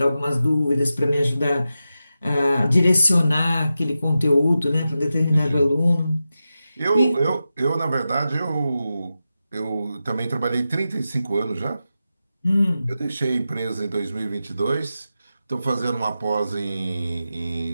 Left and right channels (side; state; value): both; inverted; correlation -0.91